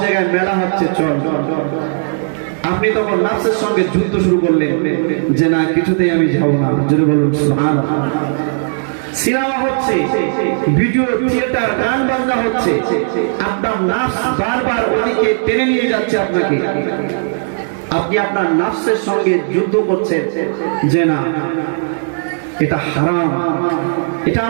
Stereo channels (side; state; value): left; silent; digital silence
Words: জায়গায় মেলা হচ্ছে, চল। আপনি তখন নফসের সঙ্গে যুদ্ধ শুরু করলেন যে না, কিছুতেই আমি যাব না। জোরে বলুন সুবহানাল্লাহ। সিনেমা হচ্ছে, ভিডিও থিয়েটার, গান বাজনা হচ্ছে, আপনার নফস বারবার ওদিকে টেনে নিয়ে যাচ্ছে আপনাকে। আপনি আপনার নফসের সঙ্গে যুদ্ধ করছেন যে না, এটা হারাম, এটা